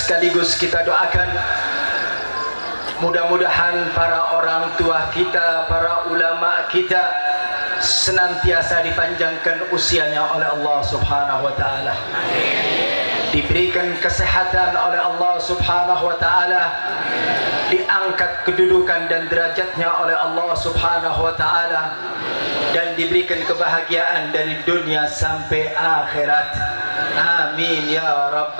kita doakan mudah-mudahan para orang tua kita, para ulama kita senantiasa dipanjangkan usianya oleh Allah Subhanahu wa taala. Diberikan kesehatan oleh Allah Subhanahu wa taala, diangkat kedudukan dan derajatnya oleh Allah Subhanahu wa taala, dan diberikan kebahagiaan dari dunia sampai akhirat. Amin ya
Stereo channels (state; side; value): inverted; both; correlation -1.00